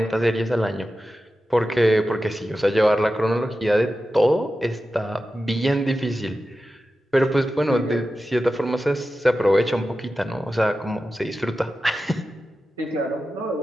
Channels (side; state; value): both; normal; correlation 0.93